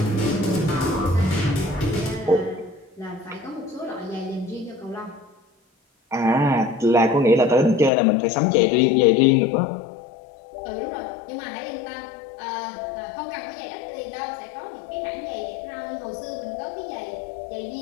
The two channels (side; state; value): right; drops out; at 7.9 s